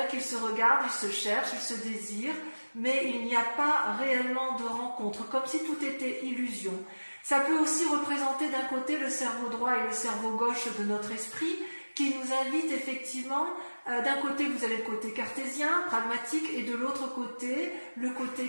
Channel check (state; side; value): inverted; both; correlation -1.00